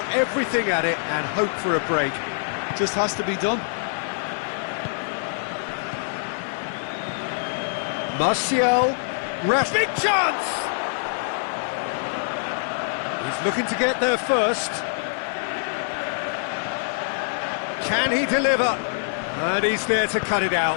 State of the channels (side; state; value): right; silent; 60 dB below the other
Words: everything at it and hope for a break. Just has to be done. Martial, big chance! He's looking to get there first. Can he deliver? And he's there to cut it